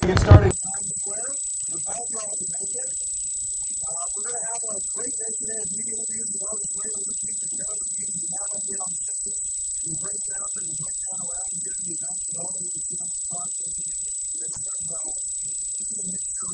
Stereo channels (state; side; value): identical; both; correlation 1.00